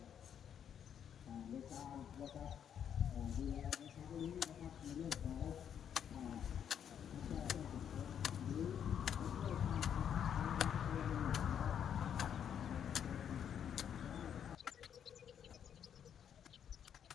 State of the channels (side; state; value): right; quieter; 8.7 dB